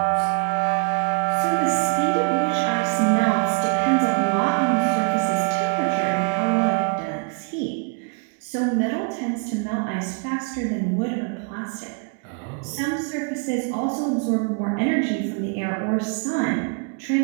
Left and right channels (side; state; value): left; quieter; 38.9 dB